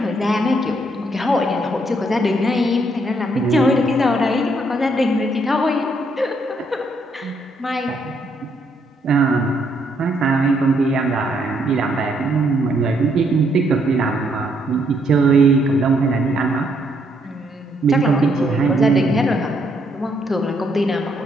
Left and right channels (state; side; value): normal; both; correlation 0.72